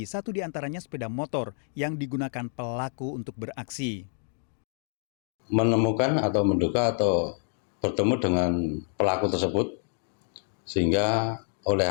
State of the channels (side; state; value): right; silent; 59 dB below the other